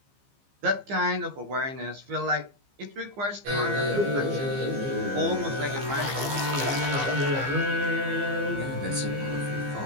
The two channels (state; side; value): late; left; 15 ms